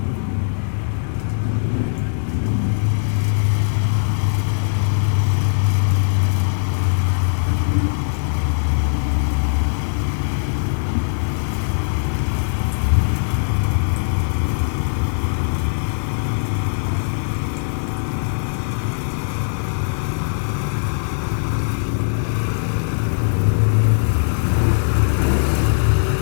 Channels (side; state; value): right; silent; 66 dB below the other